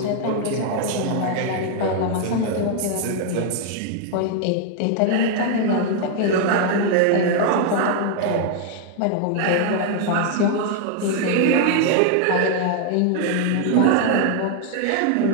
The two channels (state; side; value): different; both; correlation 0.00